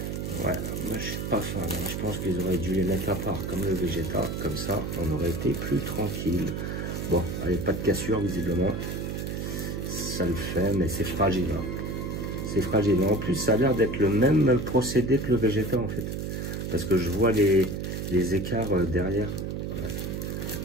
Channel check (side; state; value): right; noise; hum, 4 dB below the sound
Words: Ouais, moi je suis pas fan. Hein. Je pense qu'ils auraient dû les mettre à part comme le Vegeta. Comme ça, on aurait été plus tranquille. Bon, allez, pas de cassure visiblement. Ça le fait, mais c'est fragile. Hein. C'est fragile. En plus, ça a l'air d'être le même procédé que le Vegeta en fait. Parce que je vois les écarts derrière.